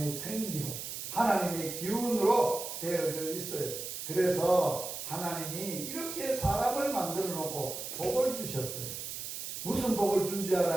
생기로, 하나님의 기운으로 되어져 있어요. 그래서 하나님이 이렇게 사람을 만들어 놓고 복을 주셨어요. 무슨 복을 준지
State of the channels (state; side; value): noise; right; hiss, 7 dB below the sound